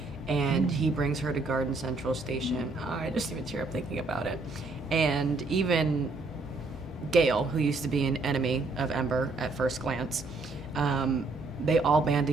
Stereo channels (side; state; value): left; quieter; 3.5 dB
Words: And he brings her to Garden Central Station. I just even tear up thinking about it. And even Gale, who used to be an enemy of Ember at first glance, they all band